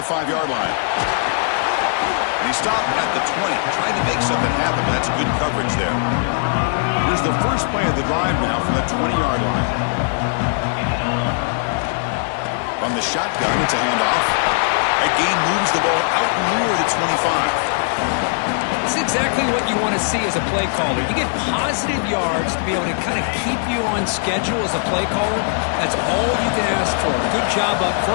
5-yard line. And he stopped at the 20. Tried to make something happen, but that's good coverage there. Here's the first play of the drive now from the 20-yard line. From the shotgun, it's a handoff. That gain moves the ball out near the 25. It's exactly what you want to see as a play caller. You get positive yards to be able to kind of keep you on schedule as a play caller. That's all you can ask for. Good job up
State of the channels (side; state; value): right; silent; 66 dB below the other